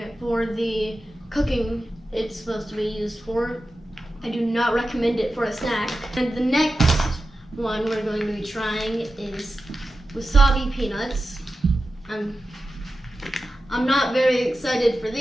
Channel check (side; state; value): both; normal; correlation 0.93